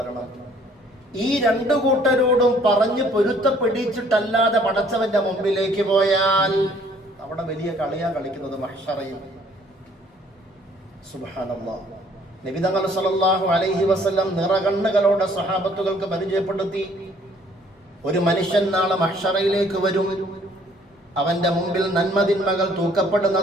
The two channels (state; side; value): normal; both; correlation 0.60